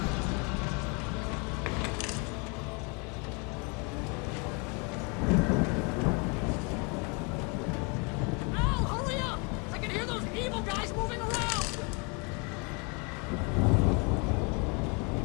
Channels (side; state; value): right; quieter; 32.7 dB